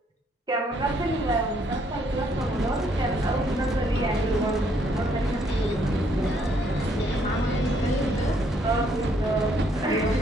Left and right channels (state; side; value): normal; both; correlation 0.69